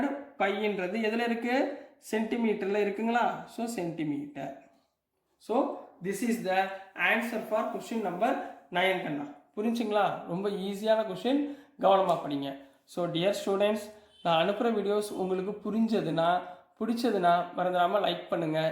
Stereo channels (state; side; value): identical; both; correlation 1.00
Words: πன்றது எதில் இருக்கு? சென்டிமீட்டரில் இருக்குங்களா? So centimetre. So this is the answer for question number 9 கண்ணா. புரிஞ்சுங்களா? ரொம்ப ஈஸியான கொஸ்டின். கவனமாக படிங்க. ஸோ டியர் ஸ்டூடெண்ட்ஸ், நான் அனுப்புகிற வீடியோஸ் உங்களுக்கு பிடிச்சதுன்னா மறந்துடாமல் லைக் பண்ணுங்கள்,